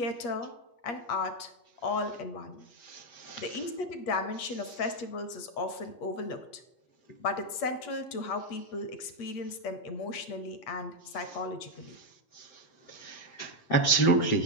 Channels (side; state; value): right; late; 8.4 ms